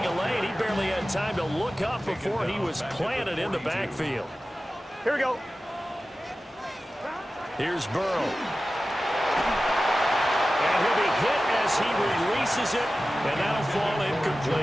a lane. He barely had time to look up before he was planted in the backfield. Here we go. Here's Burrow. And he'll be hit as he releases it, and that'll fall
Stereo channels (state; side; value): normal; both; correlation 0.95